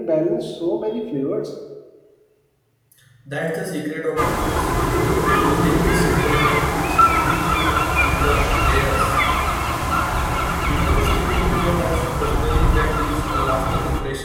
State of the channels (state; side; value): identical; both; correlation 1.00